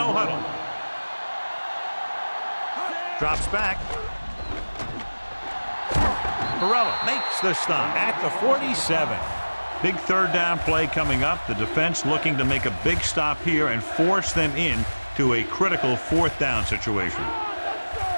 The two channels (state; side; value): inverted; both; correlation -1.00